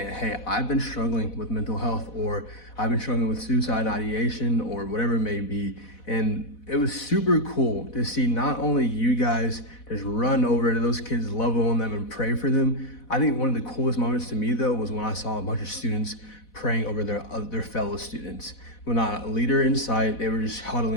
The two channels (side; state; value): right; late; 4.1 ms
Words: hey, I've been struggling with mental health, or I've been struggling with suicide ideation, or whatever it may be. And it was super cool to see not only you guys just run over to those kids, love on them and pray for them. I think one of the coolest moments to me, though, was when I saw a bunch of students praying over their fellow students. When not a leader in sight, they were just